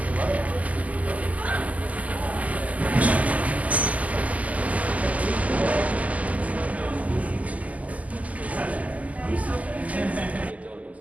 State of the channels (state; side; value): late; left; 0.074 ms